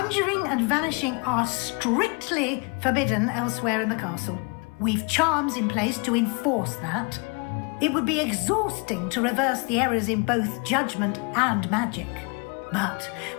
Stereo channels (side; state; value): right; quieter; 32.2 dB